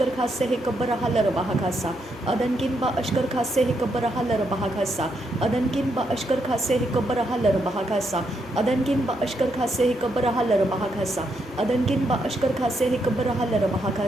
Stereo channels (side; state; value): both; normal; correlation 0.79